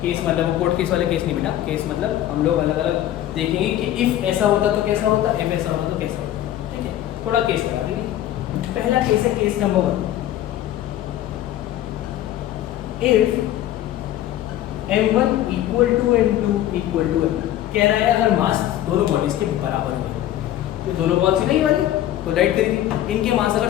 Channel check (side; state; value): right; quieter; 12.8 dB